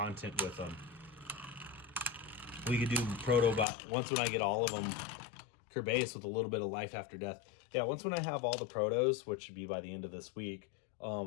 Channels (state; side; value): drops out; right; at 3.7 s